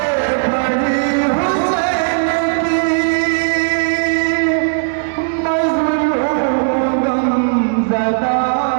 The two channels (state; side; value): silent; left; digital silence